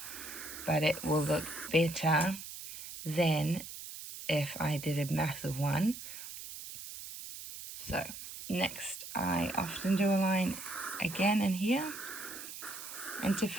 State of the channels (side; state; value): right; noise; hiss, 11 dB below the sound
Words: but it will look better than if I did a massive one. So next, I often do a line again in here. And to